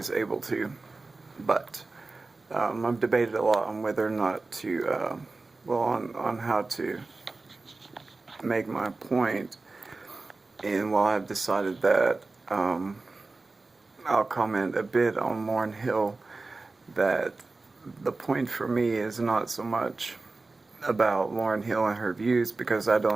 able to. But I've debated a lot on whether or not to, on how to make my point. And while I've decided that I'll comment a bit on Lauryn Hill, that the point for me is not so much about Lauryn Hill and her views, because I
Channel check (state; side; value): quieter; left; 3.5 dB